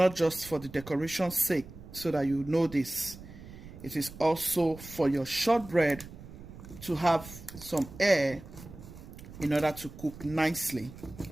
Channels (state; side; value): noise; right; rumble, 16 dB below the sound